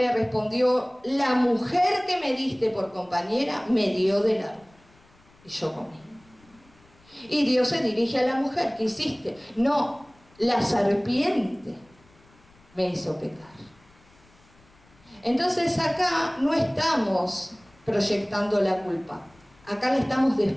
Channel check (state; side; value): noise; left; rumble, 30 dB below the sound